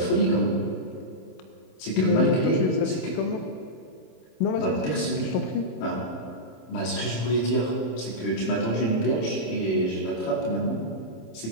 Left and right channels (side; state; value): right; late; 27 ms